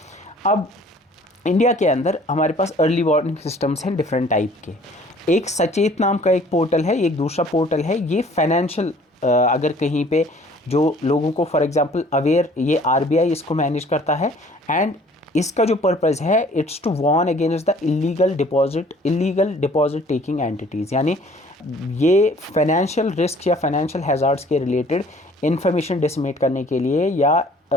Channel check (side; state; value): both; normal; correlation 0.54